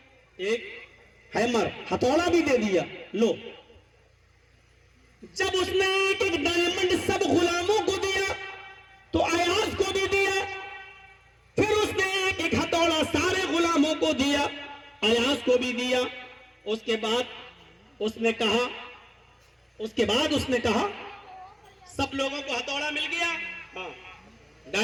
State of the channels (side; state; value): both; identical; correlation 1.00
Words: ایک ہیمر، ہتھوڑا بھی دے دیا، لو۔ جب اس نے ایک ایک ڈائمنڈ سب غلاموں کو دیا تو ایاز کو بھی دیا، پھر اس نے ایک ایک ہتھوڑا سارے غلاموں کو دیا، ایاز کو بھی دیا۔ اس کے بعد اس نے کہا سب لوگوں کو ہتھوڑا مل گیا؟ ہاں۔